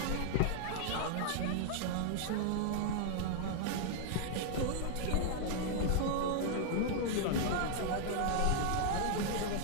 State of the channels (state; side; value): different; both; correlation -0.01